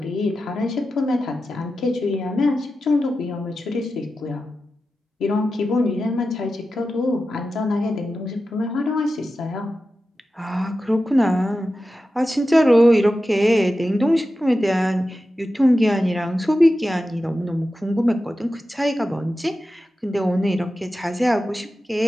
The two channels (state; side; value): normal; both; correlation 0.92